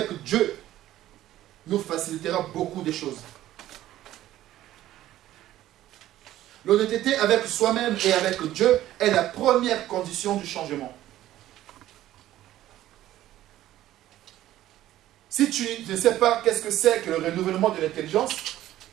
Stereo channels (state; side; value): quieter; left; 13.8 dB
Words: Dieu, nous facilitera beaucoup de choses. L'honnêteté avec soi-même et avec Dieu est la première condition du changement. Si tu ne sais pas qu'est-ce que c'est que le renouvellement de l'intelligence,